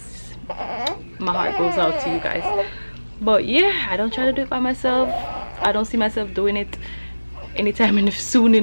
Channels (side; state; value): both; inverted; correlation -1.00